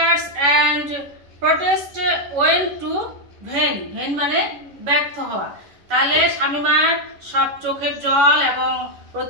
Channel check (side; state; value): left; late; 11 ms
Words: and protest went to vain মানে ব্যর্থ হওয়া। তাহলে শামিমার সব চোখের জল এবং